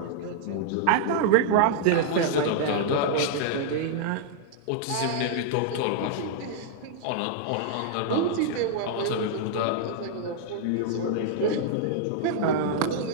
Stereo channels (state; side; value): different; both; correlation -0.01